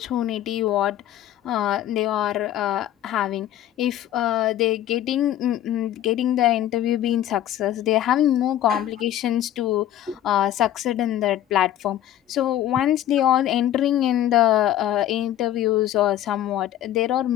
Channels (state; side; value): quieter; right; 12.2 dB